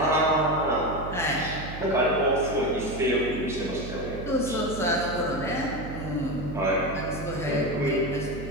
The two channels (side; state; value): right; noise; hum, 9 dB below the sound